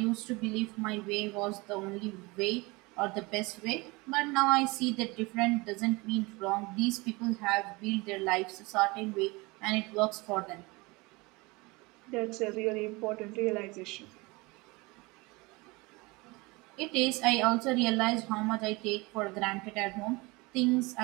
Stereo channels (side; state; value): left; quieter; 24.7 dB